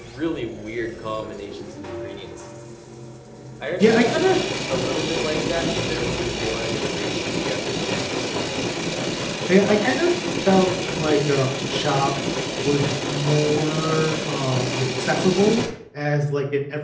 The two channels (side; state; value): both; identical; correlation 1.00